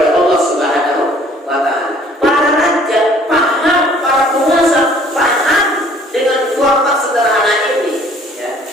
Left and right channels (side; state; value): both; normal; correlation 0.56